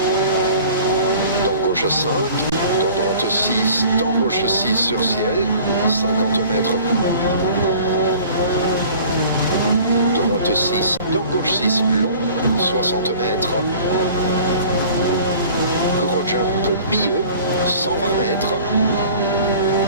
Dans gauche 5, dans droite 6, dans gauche 6 sur ciel, 50 mètres. Droite 6, dans gauche 6 long, 60 mètres. Gros jump milieu, 120 mètres.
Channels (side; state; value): both; inverted; correlation -0.47